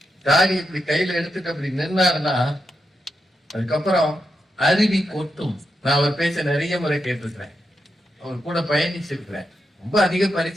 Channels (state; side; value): normal; both; correlation 0.86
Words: தாடி இப்படி கையில எடுத்துட்டு அப்படி நின்னாருன்னா அதுக்கப்புறம் அருவி கொட்டும். நான் அவர் பேச்ச நிறைய முறை கேட்டிருக்கிறேன், அவர் கூட பயணிச்சிருக்கிறேன். ரொம்ப அதிக